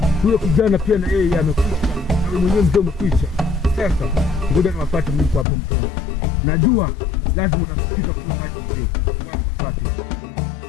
Huyo kijana pia na yeye amekwisha. Na wewe mwenyewe mzee umekwisha. Sasa ngoja niwafuate mimi hapo mzee. Najua lazima utafikisha kwa maji mzee.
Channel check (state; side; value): drops out; right; at 5.5 s